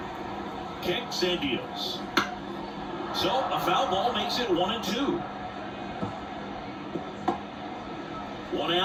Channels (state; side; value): identical; both; correlation 1.00